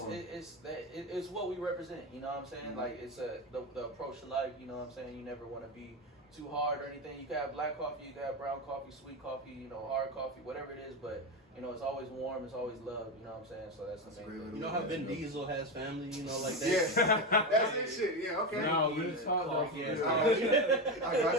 it's what we represent. You know what I'm saying? Like it's the approach to life. You know what I'm saying? You never want to be too hard or anything. You can have black coffee, you can have brown coffee, sweet coffee, you know, hard coffee, whatever it is, but you know, it's always warm, it's always love, you know what I'm saying? So that's the main thing. You know how Vin Diesel has family, you know, like that? Yeah, that's his shit, yeah, okay. No, we just talk coffee. I got you.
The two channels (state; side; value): normal; both; correlation 0.15